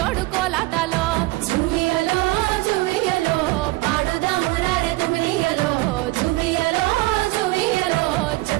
కోలాటలో జువియలో జువియలో పాడుదాము రార తొమ్మిదియలో జువియలో జువియలో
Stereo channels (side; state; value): left; quieter; 20.8 dB